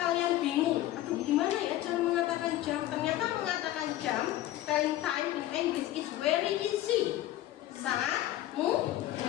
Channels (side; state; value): right; quieter; 14.4 dB